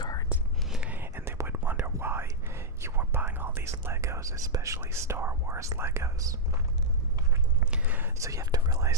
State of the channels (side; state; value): both; normal; correlation -0.06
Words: and they would wonder why you were buying all these Legos, especially Star Wars Legos. So you have to